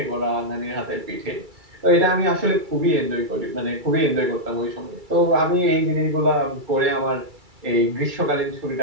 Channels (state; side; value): late; left; 2.3 ms